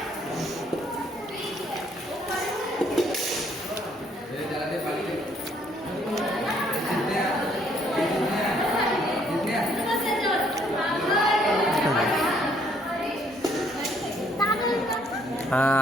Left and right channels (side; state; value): both; normal; correlation 0.65